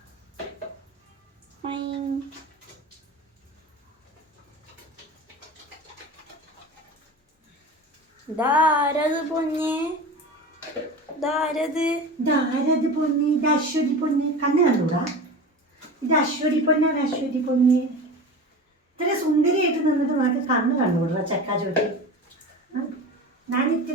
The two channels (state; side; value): normal; both; correlation 0.32